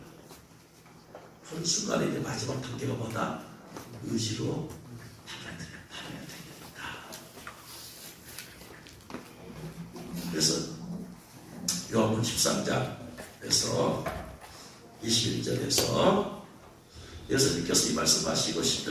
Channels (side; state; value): both; identical; correlation 1.00